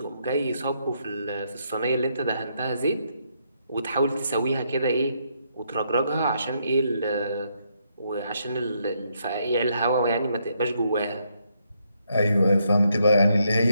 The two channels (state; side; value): inverted; both; correlation -0.76